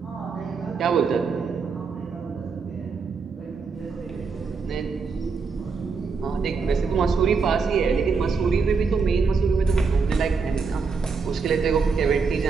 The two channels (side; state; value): left; quieter; 5.0 dB